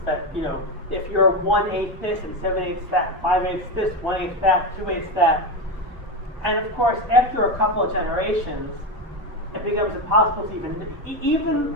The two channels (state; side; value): normal; both; correlation 0.14